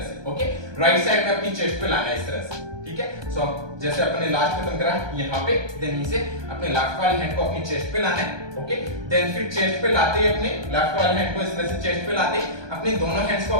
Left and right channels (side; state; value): left; late; 1.2 ms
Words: से। ओके, राइट साइड में अपनी चेस्ट पे लाना है इस तरह से। ठीक है, सो अब जैसे अपने लास्ट खत्म करा यहाँ पे, देन यहीं से अपने लेफ्ट वाले हैंड को अपनी चेस्ट पे लाना है। ओके, देन फिर चेस्ट पे लाते अपने लेफ्ट वाले हैंड को इस तरह से चेस्ट पे लाते अपने दोनों हैंड्स को